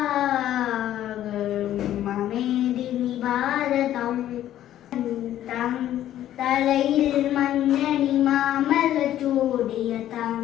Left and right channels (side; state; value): right; quieter; 12.3 dB